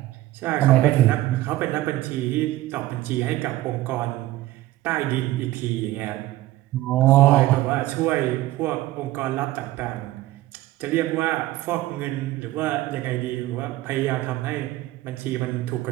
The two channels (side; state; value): left; quieter; 16.3 dB